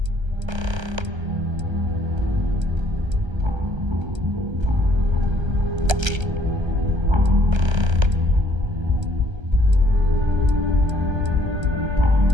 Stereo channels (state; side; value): late; left; 1.3 ms